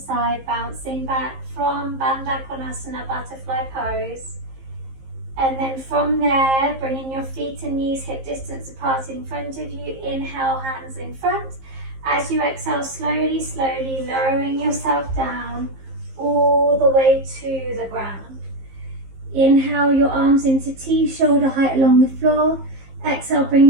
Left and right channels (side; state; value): left; late; 15 ms